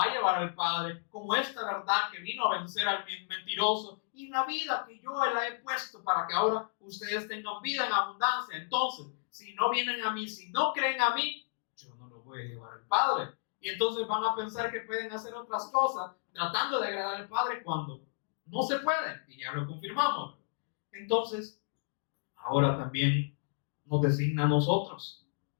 a llevar al Padre, como esta verdad que vino a vencer al mentiroso, y la vida que yo la he puesto para que ahora ustedes tengan vida en abundancia. Entonces, si no vienen a mí, si no creen a mí, yo no los voy a llevar al Padre. Y entonces van a pensar que pueden hacer otras cosas tratando de agradar al Padre cuando no se puede, y ya lo confirmamos. Entonces, ahora también nos designa a nosotros.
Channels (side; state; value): right; silent; digital silence